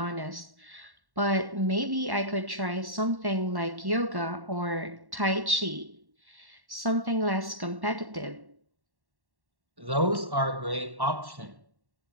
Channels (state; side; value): late; left; 1.1 ms